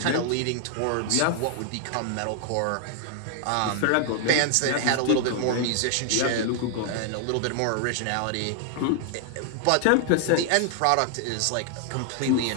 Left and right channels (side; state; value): both; different; correlation 0.00